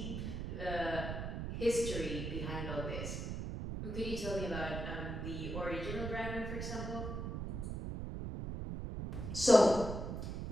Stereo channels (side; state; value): right; noise; rumble, 4 dB below the sound